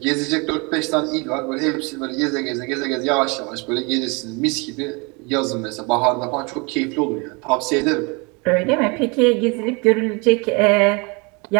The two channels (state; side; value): quieter; left; 29.6 dB